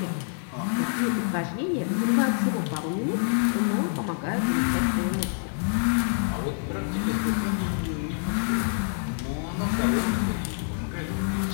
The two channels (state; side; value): silent; right; 55 dB below the other